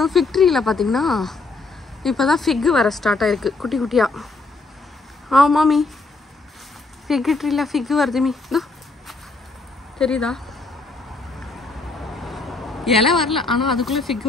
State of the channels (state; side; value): quieter; right; 3.5 dB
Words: ஃபிக் ட்ரீயில் பார்த்தீங்கன்னா இப்போ தான் ஃபிக்கு வர ஸ்டார்ட் ஆகிருக்கு குட்டி குட்டியாக. மாமி ஃபிக் ட்ரீயில் ஃபிக்கு வருது மீ, இதோ தெரியுதா? இலை வரல, ஆனால் அதுக்குள்ளே ஃபிக்கு